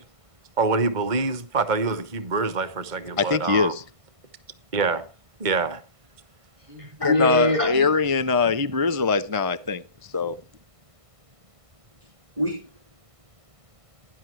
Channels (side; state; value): left; late; 1.5 ms